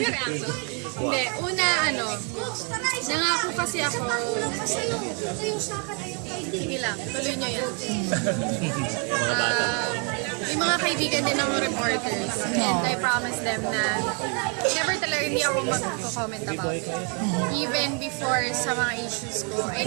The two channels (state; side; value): quieter; left; 37.5 dB